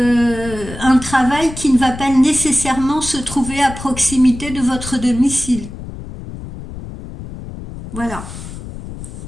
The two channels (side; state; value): left; noise; rumble, 11 dB below the sound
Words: travail qui ne va pas nécessairement se trouver à proximité de votre domicile. Voilà.